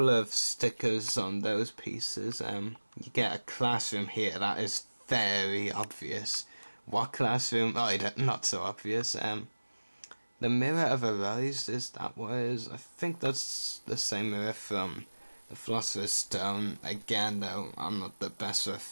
of stickers on those pieces. You get a classroom here. That is very obvious. What classroom? Oh, not so obvious. The Mirror of Arise, is that what it is? I think that's the same mirror from the Philosopher's Stone. Again, though, I'm not the best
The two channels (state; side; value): inverted; both; correlation -1.00